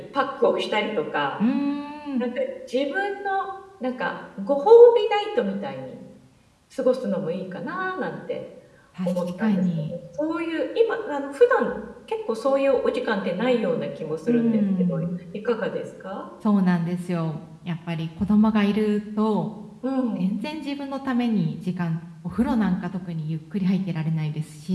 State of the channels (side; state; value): both; identical; correlation 1.00